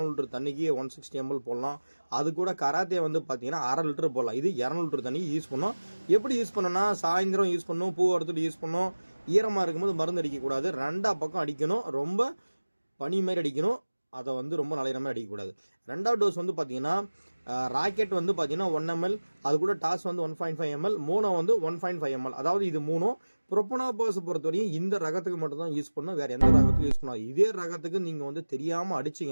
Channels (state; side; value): inverted; both; correlation -1.00